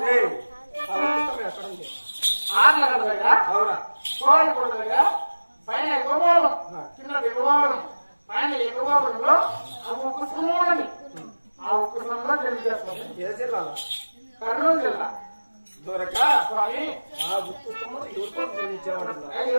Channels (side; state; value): both; inverted; correlation -1.00